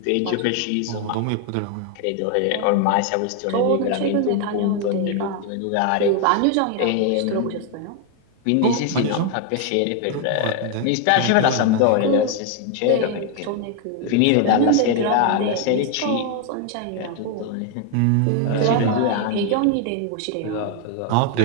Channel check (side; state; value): both; different; correlation 0.01